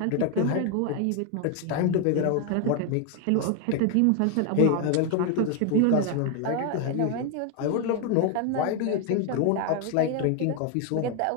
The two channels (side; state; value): both; different; correlation 0.01